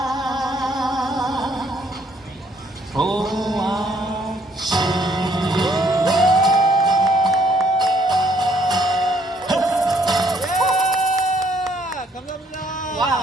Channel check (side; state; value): both; normal; correlation 0.66